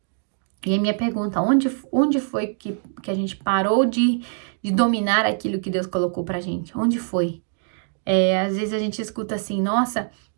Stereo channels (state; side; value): silent; left; digital silence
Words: E a minha pergunta, onde foi que a gente parou de dominar aquilo que Deus colocou pra gente? Onde foi? Às vezes a gente escuta assim, nossa,